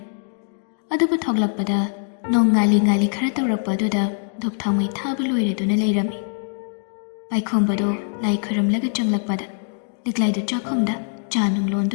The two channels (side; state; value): right; silent; digital silence